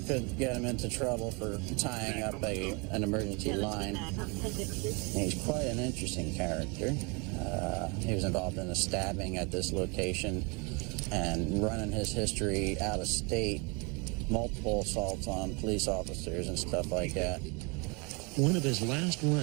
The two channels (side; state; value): left; quieter; 29.6 dB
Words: could get him into trouble for tying up an emergency line. And he's quite an interesting character. He was involved in a stabbing at this location and running his history out of state, multiple assaults on police officers and stuff like that. One of his last